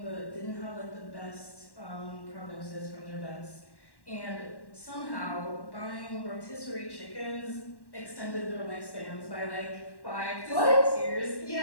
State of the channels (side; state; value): right; late; 1.1 ms